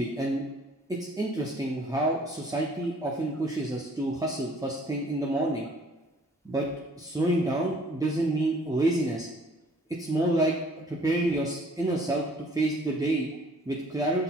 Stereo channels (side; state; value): both; normal; correlation 0.57